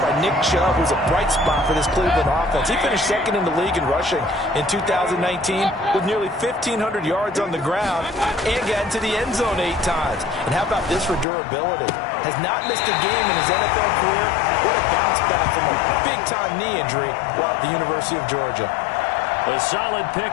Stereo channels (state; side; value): drops out; right; at 11.2 s